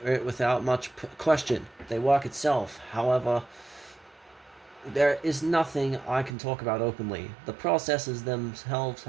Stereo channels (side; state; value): left; drops out; at 6.3 s